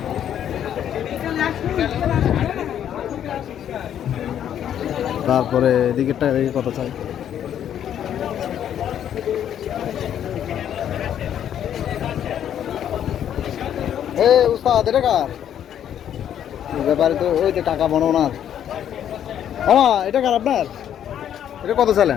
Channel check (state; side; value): quieter; right; 9.9 dB